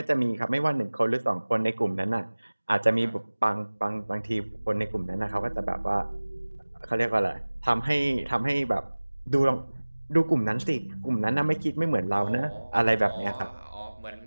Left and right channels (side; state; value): both; inverted; correlation -1.00